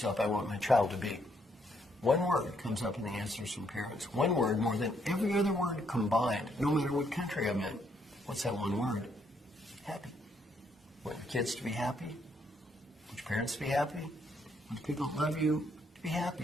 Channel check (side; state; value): both; normal; correlation 0.72